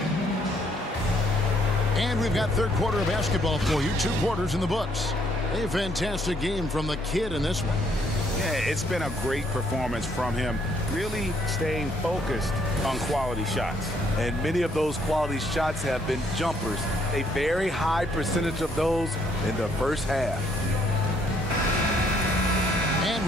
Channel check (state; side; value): normal; both; correlation 0.68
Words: And we've got third quarter of basketball for you. 2 quarters in the books. A fantastic game from the Kid in this one. Yeah, it's been a great performance from him, really staying focused on quality shots. And many of those quality shots have been jumpers. A very high percentage of those in the first half. And